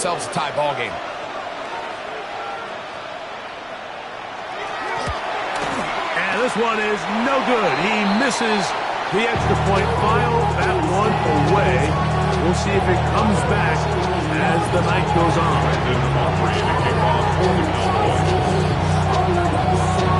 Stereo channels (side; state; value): both; identical; correlation 1.00